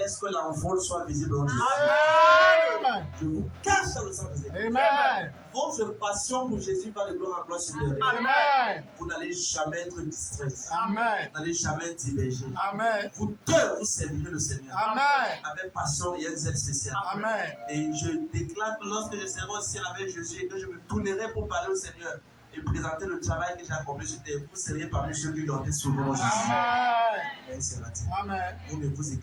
que l'envol soit visible en Jésus. Amen. Je vous cache dans le sang de Jésus. Amen. Votre passion pour Jésus va de gloire en gloire supérieure. Amen. Vous n'allez jamais être distrait. Amen. Vous n'allez jamais être divergé. Amen. Vous deux, vous servirez le Seigneur. Amen. Avec passion et un zèle spécial. Amen. Et je déclare que lorsque je serai au ciel avec Jésus et que je me tournerai pour parler au Seigneur et présenter le travail que j'ai accompli sur terre, vous serez parmi ceux qui ont été sauvés en Jésus. Amen. Amen. Vous ne vous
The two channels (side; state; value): both; identical; correlation 1.00